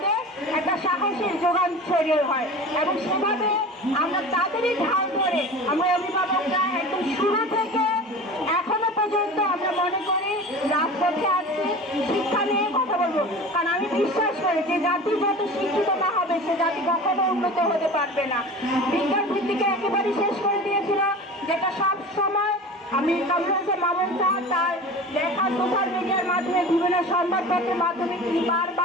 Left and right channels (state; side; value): normal; both; correlation 0.36